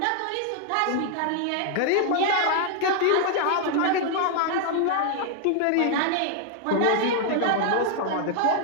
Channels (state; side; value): different; both; correlation 0.00